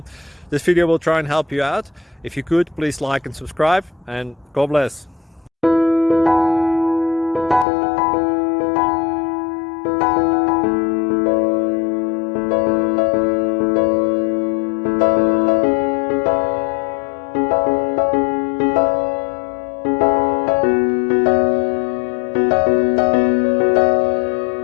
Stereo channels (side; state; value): right; drops out; at 7.7 s